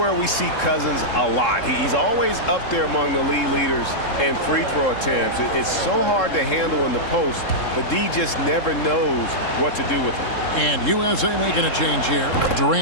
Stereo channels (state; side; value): late; right; 3.7 ms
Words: we see Cousins a lot. He's always up there among the league leaders in free throw attempts. It's so hard to handle in the post. The D just never knows what to do with him. And USA making a change here.